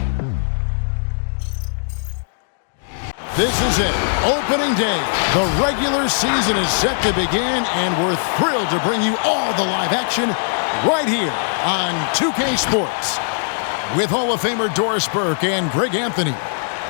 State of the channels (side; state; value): right; silent; digital silence